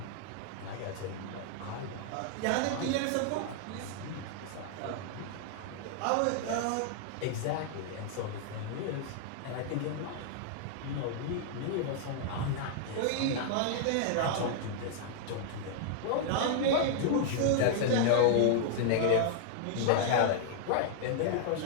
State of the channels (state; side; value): different; both; correlation -0.01